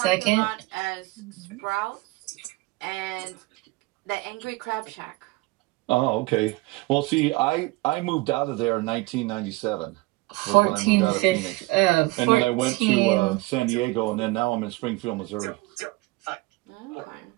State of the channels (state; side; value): quieter; left; 22.4 dB